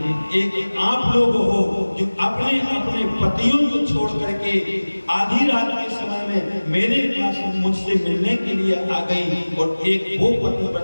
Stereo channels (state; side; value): inverted; both; correlation -1.00